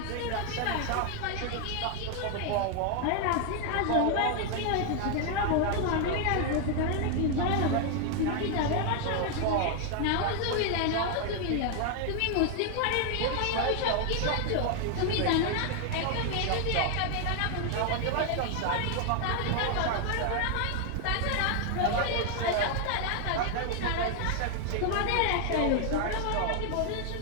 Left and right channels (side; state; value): both; different; correlation 0.00